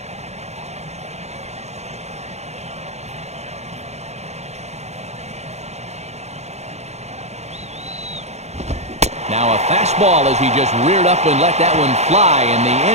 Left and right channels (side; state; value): left; late; 0.32 ms